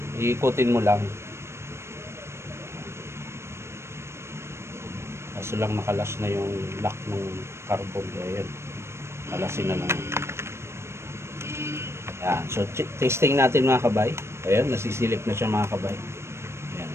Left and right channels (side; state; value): left; late; 0.13 ms